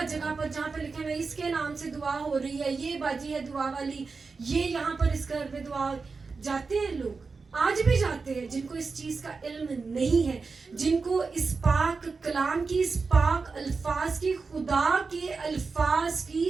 جگہ پر جہاں پہ لکھے ہوئے اس کے نام سے دعا ہو رہی ہے، یہ باجی ہے دعا والی، یہ یہاں پر اس گھر میں دعا، جاتے ہیں لوگ، آج بھی جاتے ہیں، جن کو اس چیز کا علم نہیں ہے، جن کو اس پاک کلام کی، اس پاک الفاظ کی، خدا کے الفاظ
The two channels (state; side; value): quieter; left; 4.5 dB